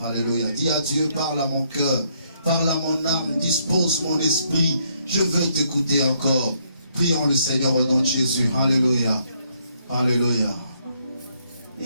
Alléluia. Dis à Dieu, parle à mon cœur, parle à mon âme, dispose mon esprit. Je veux t'écouter encore. Prions le Seigneur au nom de Jésus. Alléluia. Alléluia.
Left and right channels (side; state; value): both; inverted; correlation -0.72